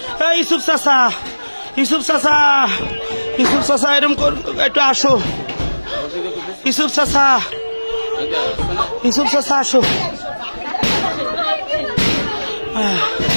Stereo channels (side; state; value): both; inverted; correlation -1.00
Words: ইউসুফ চাচা, ইউসুফ চাচা, ইউসুফ চাচা এরকম একটু আসো, ইউসুফ চাচা, ইউসুফ চাচা আসো।